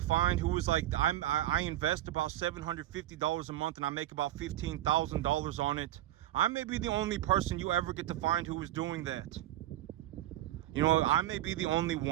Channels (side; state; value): left; quieter; 14.1 dB